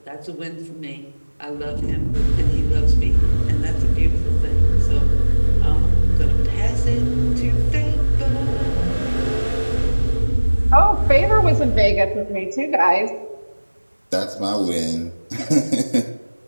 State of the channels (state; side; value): inverted; both; correlation -1.00